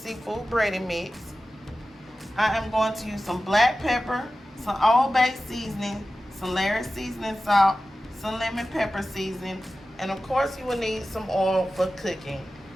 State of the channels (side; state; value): both; normal; correlation 0.95